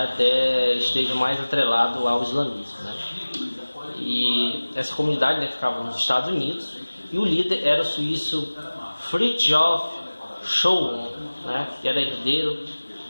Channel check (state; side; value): inverted; both; correlation -1.00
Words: esteja mais atrelado ao islamismo, né? E essa comunidade, né, ficava nos Estados Unidos e o líder era o suíço Fridtjof Schuon, né, que era herdeiro